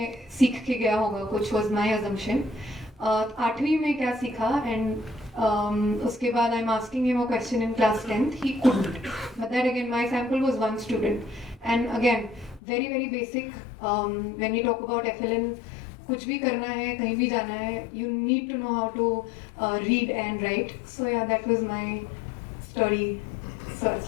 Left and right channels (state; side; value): drops out; right; at 12.6 s